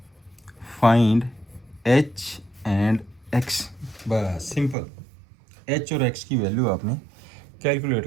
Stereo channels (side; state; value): left; drops out; at 4.8 s